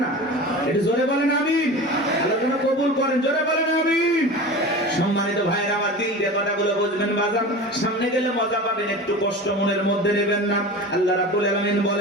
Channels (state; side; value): normal; both; correlation 0.33